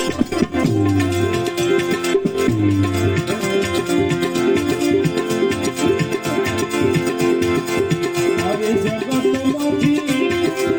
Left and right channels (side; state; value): both; identical; correlation 1.00